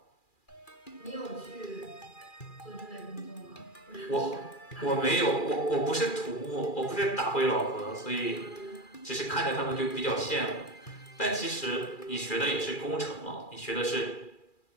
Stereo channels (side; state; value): right; late; 2.4 ms